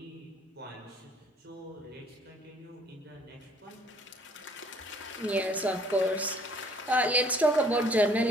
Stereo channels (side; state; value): both; normal; correlation 0.58